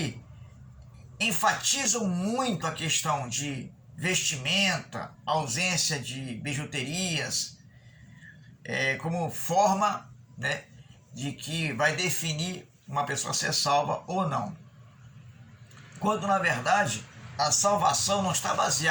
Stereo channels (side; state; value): both; identical; correlation 1.00